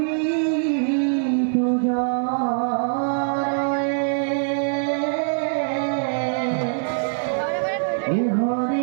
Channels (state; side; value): silent; left; 57 dB below the other